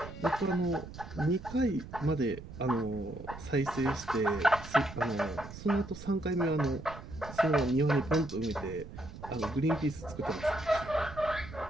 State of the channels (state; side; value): noise; right; rumble, 13 dB below the sound